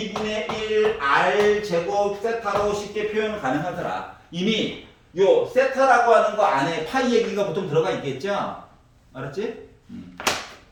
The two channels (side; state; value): both; identical; correlation 1.00